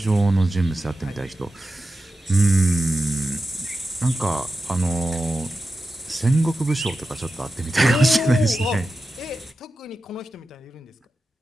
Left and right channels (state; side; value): normal; both; correlation 0.92